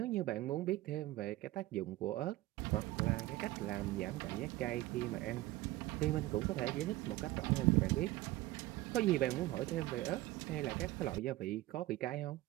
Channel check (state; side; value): quieter; left; 17.5 dB